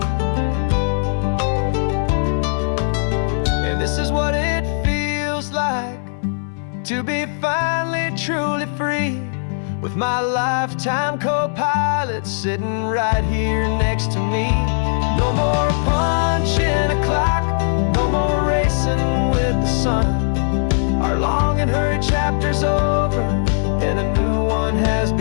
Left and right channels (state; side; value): silent; right; 66 dB below the other